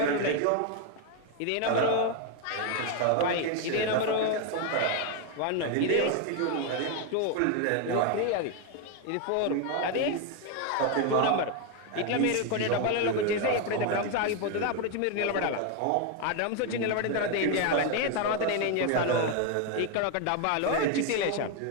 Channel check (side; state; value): both; different; correlation 0.01